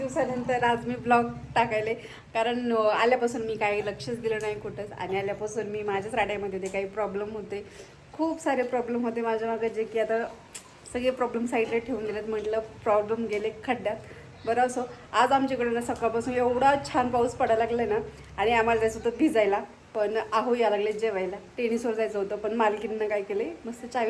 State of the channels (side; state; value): both; identical; correlation 1.00